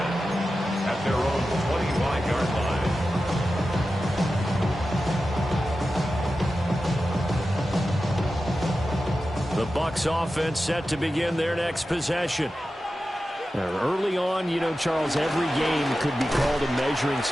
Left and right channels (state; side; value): normal; both; correlation 0.93